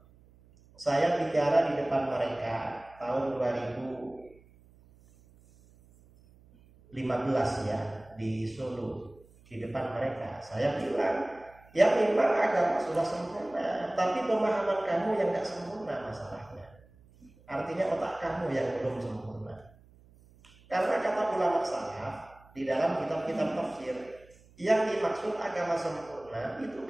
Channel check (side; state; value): right; noise; hum, 27 dB below the sound